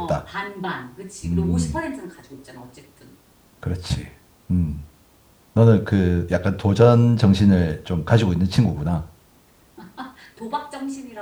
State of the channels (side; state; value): both; identical; correlation 1.00